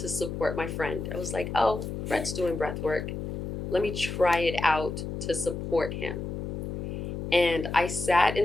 to support my friend. I was like, oh, Brett's doing breath work. Let me try it out to support him. And I sat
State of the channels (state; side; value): noise; left; hum, 5 dB below the sound